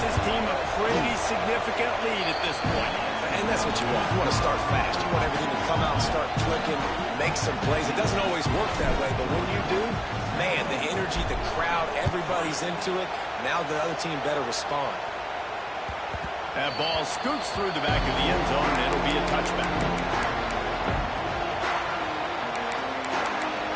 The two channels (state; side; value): identical; both; correlation 1.00